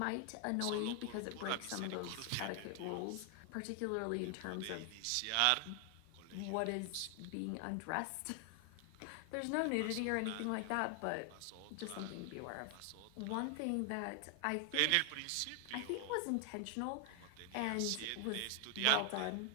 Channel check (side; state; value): both; different; correlation 0.00